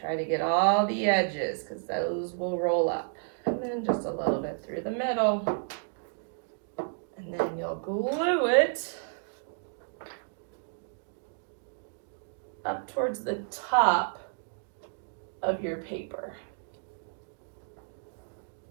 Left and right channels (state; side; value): silent; left; digital silence